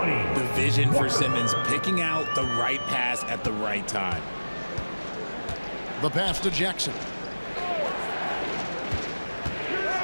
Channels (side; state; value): both; inverted; correlation -1.00